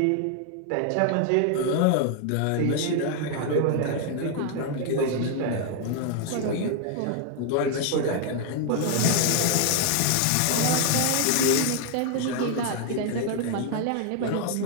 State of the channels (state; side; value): different; both; correlation 0.00